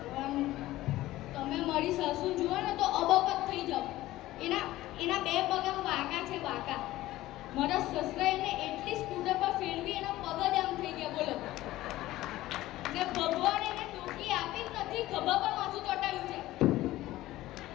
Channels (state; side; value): quieter; right; 16.3 dB